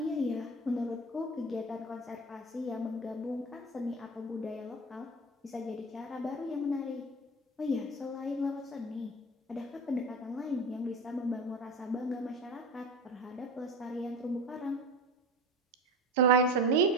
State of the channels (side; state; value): both; normal; correlation 0.29